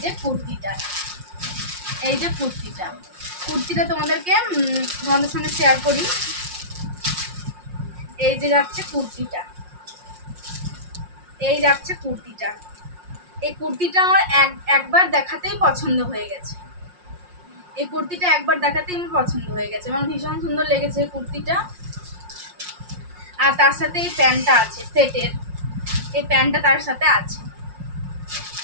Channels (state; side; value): late; left; 5.6 ms